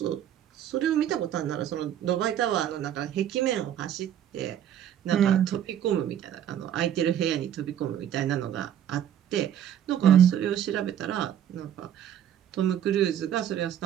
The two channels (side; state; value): left; quieter; 10.2 dB